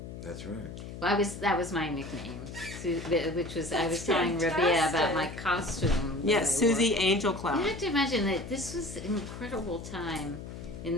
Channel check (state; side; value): noise; left; hum, 10 dB below the sound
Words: That's right. Well, that was my nickname, which was I was telling fantastic. Rabia about my costume. Yes, Suzy Angel You Cloud. have to imagine that this was an incredible time